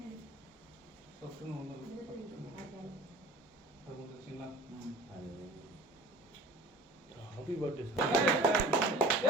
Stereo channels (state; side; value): normal; both; correlation 0.42